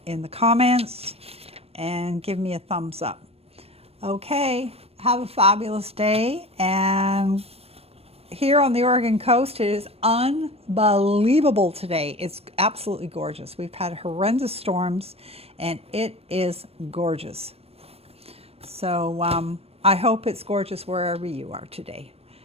in the comments and give me a thumbs up. Okay, have a fabulous day. And here on the Oregon coast, it is unbelievable today. It's absolutely gorgeous. We've had horrendous storms and it is gorgeous. So I hope it's gorgeous wherever you are today.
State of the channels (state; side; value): late; left; 0.29 ms